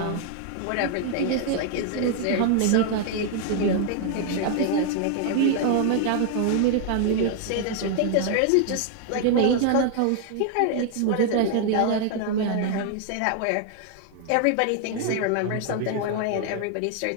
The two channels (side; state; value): both; different; correlation 0.00